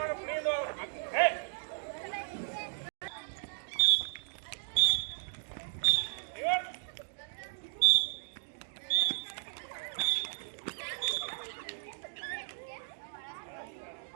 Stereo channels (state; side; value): silent; left; digital silence